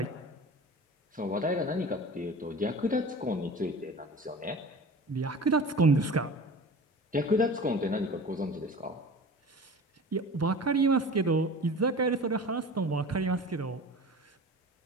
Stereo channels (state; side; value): normal; both; correlation 0.37